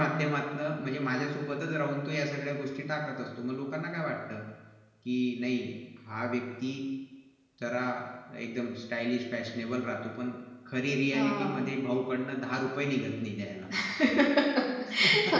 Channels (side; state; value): both; identical; correlation 1.00